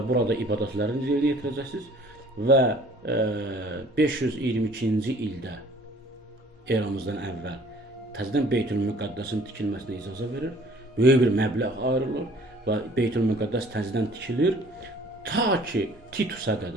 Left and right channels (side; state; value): both; normal; correlation 0.54